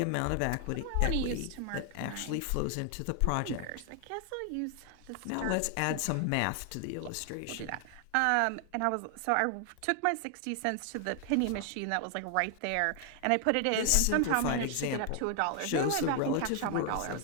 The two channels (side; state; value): both; different; correlation 0.00